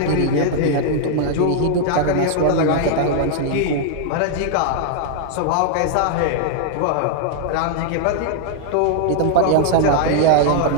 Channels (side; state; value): both; different; correlation -0.01